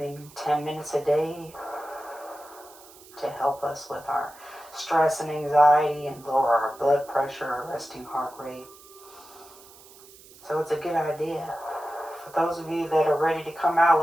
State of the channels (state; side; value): noise; right; hiss, 22 dB below the sound